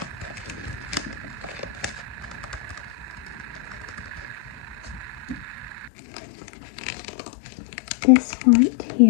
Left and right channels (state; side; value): drops out; right; at 5.9 s